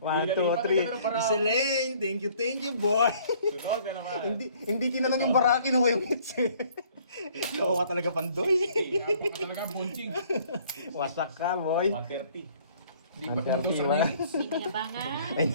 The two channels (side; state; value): both; inverted; correlation -0.58